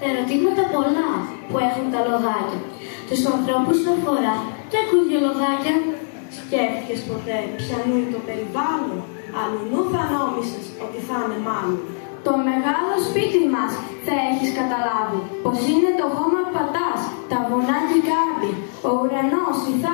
Ερωτήματα πολλά που έχουν τα λοδάκια. Τους ανθρώπους αφορά και ακούγε λοδάκια. Σκέφτηκες ποτέ ποιανού είναι το περιβάλλον? Αλλουνού θα νόμισες ότι θα είναι μάλλον. Το μεγάλο σπίτι μας θα έχεις καταλάβει πως είναι το χώμα που πατάς, τα βουνά και η κάρπη, ο ουρανός, η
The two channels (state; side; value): silent; right; digital silence